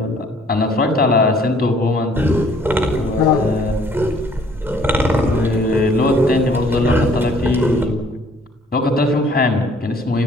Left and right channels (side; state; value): both; normal; correlation 0.59